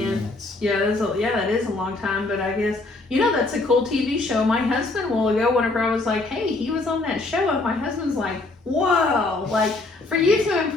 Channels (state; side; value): quieter; right; 3.2 dB